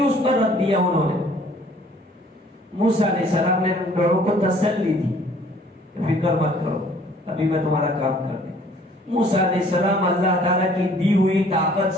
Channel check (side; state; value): both; normal; correlation 0.56